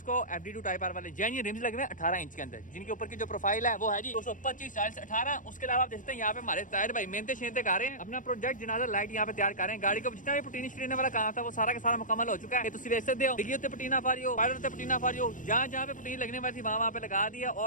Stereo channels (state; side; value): late; right; 0.38 ms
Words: FD2 टाइप आर वाले जेन्युइन रिम्स लगे हुए 18 इंच के अंदर, जिनके ऊपर की जो प्रोफाइल है वो है जी 225 40 18। उसके अलावा आप देखते हैं यहाँ पे हमारे ताहिर भाई मेहनत शेनते कर रहे हैं, अपना प्रोजेक्ट जनाजा लाइट यहाँ पे तैयार कर रहे हैं। गाड़ी को जितना भी पटीनी शटीने वाला काम था वो सारा का सारा मुकम्मल हो चुका है। तुम देख सकते हो, डिग्गी पटीना फारियो, पायलट पटीना फारियो, जहाँ जहाँ पे पटीनी लगने वाली थी वहाँ पे लगा दिया।